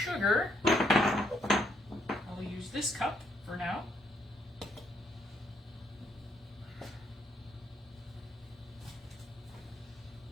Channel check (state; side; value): normal; both; correlation 0.72